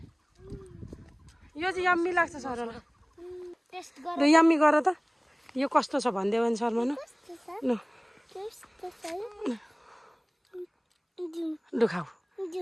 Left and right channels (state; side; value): identical; both; correlation 1.00